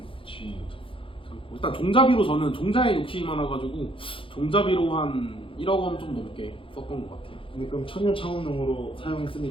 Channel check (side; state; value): right; late; 0.25 ms